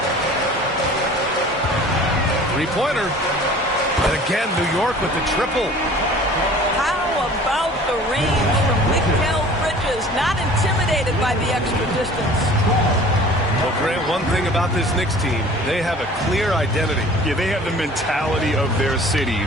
3-pointer. And again, New York with the triple. How about the range from Mikal Bridges? Not intimidated by the extra distance. Well, Grant, one thing about this Knicks team, they have a clear identity. Yeah, they have the mentality of their city,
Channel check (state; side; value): normal; both; correlation 0.46